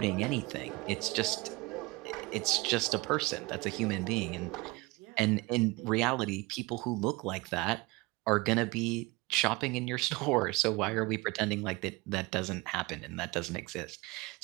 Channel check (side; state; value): left; quieter; 23.7 dB